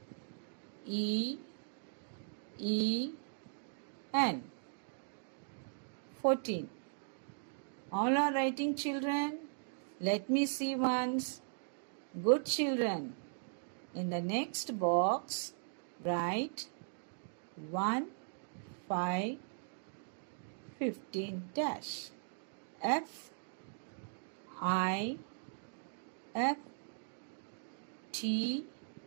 E E N 14. All are writing, children? Let me see once. Good children. In the next box, write 1, 5, 15 dash. F I F T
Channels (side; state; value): left; silent; digital silence